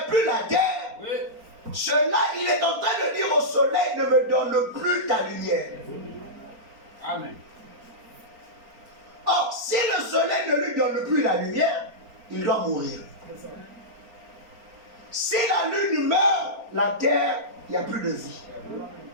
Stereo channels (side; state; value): left; late; 4.4 ms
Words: plus la terre, Oui. cela, il est en train de dire au soleil, ne me donne plus ta lumière. Amen. Or, si le soleil ne lui donne plus la lumière, il doit mourir. Si la lune meurt, la terre, il n'y a plus de vie.